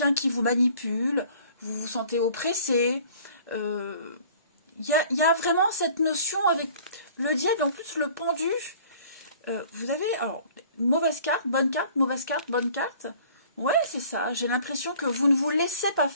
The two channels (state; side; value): inverted; both; correlation -0.51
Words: qui vous manipule, vous vous sentez oppressé. Il y a vraiment cette notion avec le diable, en plus le pendu. Vous avez, alors, mauvaise carte, bonne carte, mauvaise carte, bonne carte. Ouais, c'est ça. J'ai l'impression que vous ne vous laissez pas